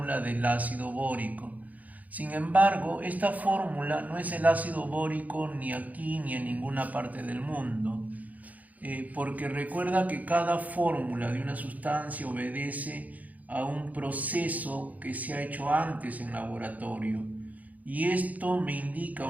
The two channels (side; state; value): left; late; 0.076 ms